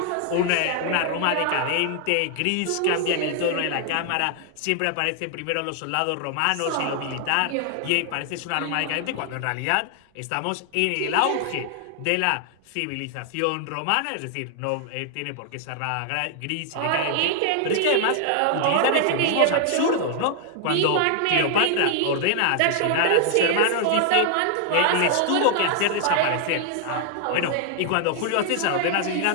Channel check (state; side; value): different; both; correlation 0.00